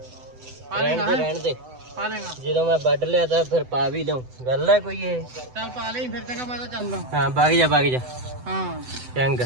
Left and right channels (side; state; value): left; late; 7.9 ms